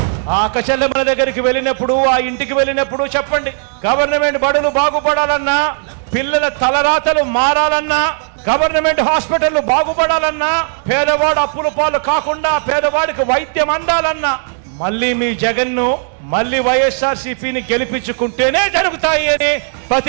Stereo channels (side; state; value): left; silent; 66 dB below the other